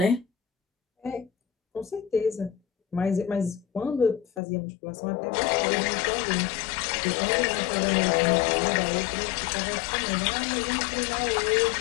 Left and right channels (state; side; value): drops out; right; at 4.4 s